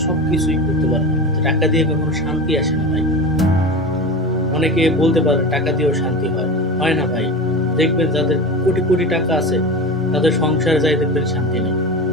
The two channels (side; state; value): both; normal; correlation 0.28